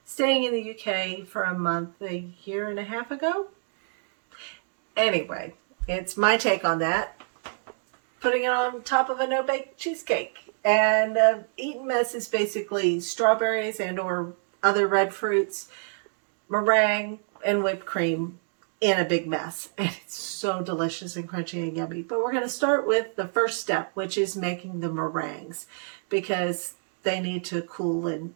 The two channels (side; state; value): left; silent; digital silence